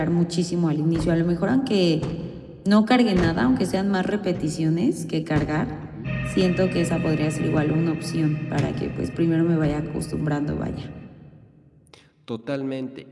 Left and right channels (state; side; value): identical; both; correlation 1.00